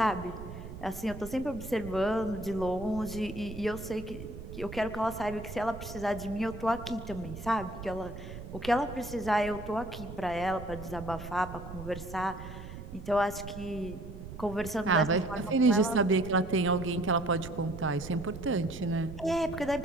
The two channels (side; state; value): right; noise; rumble, 11 dB below the sound